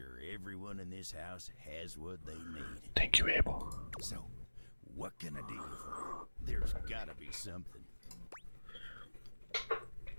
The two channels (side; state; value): both; inverted; correlation -1.00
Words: everyone in this house has what they need. Thank you, Abel. So, what can I do for you? There's gotta be something.